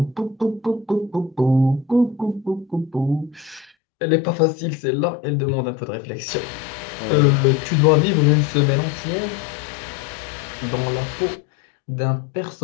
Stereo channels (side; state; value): right; drops out; at 3.7 s